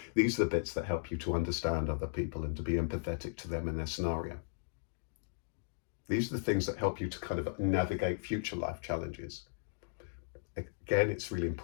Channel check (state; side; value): silent; right; digital silence